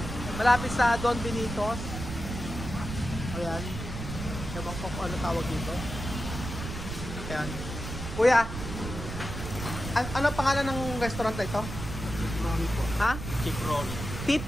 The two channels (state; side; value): noise; right; rumble, 7 dB below the sound